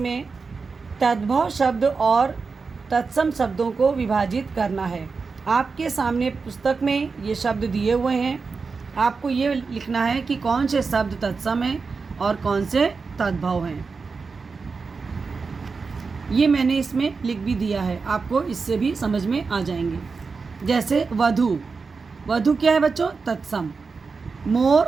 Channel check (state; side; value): quieter; left; 4.7 dB